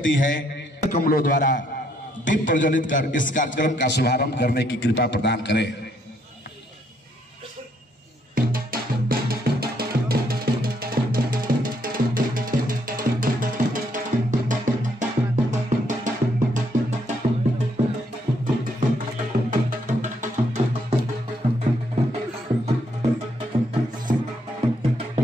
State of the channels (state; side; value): normal; both; correlation 0.71